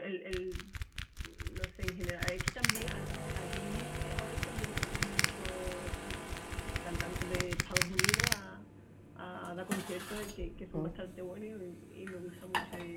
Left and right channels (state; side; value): identical; both; correlation 1.00